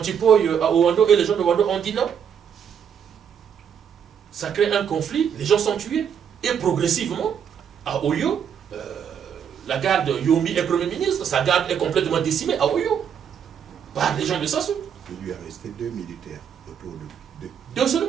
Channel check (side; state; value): left; quieter; 8.0 dB